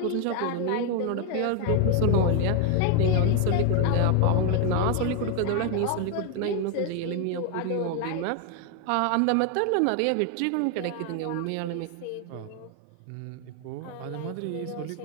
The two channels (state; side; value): different; both; correlation 0.01